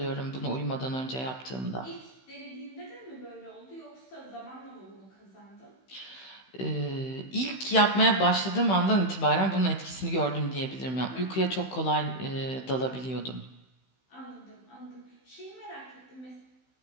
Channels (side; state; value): right; late; 16 ms